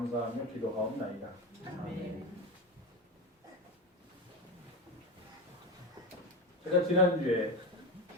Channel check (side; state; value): both; normal; correlation 0.21